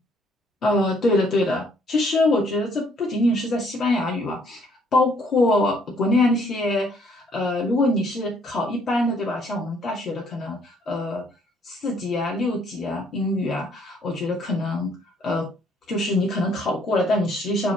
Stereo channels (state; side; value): normal; both; correlation 0.65